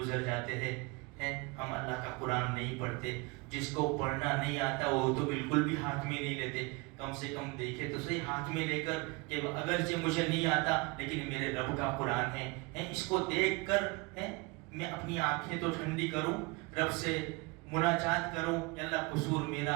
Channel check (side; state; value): left; quieter; 26.7 dB